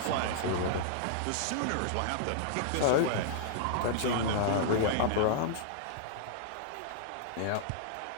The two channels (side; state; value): both; different; correlation -0.01